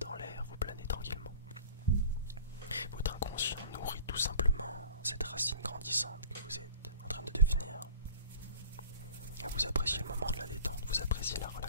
l'air, vous planez tranquillement. Votre inconscient nourrit tout simplement cette racine grandissante que vous êtes en train de devenir. Et vous appréciez le moment de la détente, vous appréciez la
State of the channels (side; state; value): both; inverted; correlation -0.44